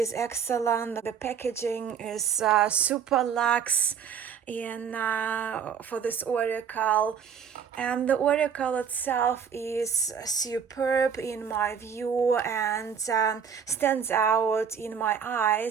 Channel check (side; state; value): left; quieter; 7.3 dB